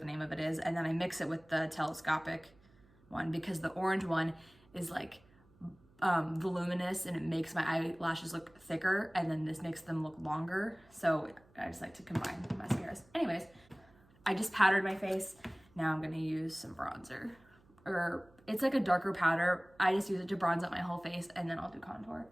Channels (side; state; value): right; noise; hum, 29 dB below the sound